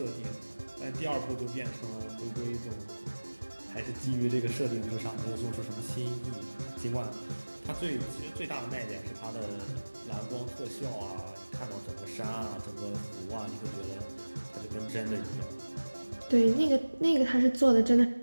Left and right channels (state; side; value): inverted; both; correlation -1.00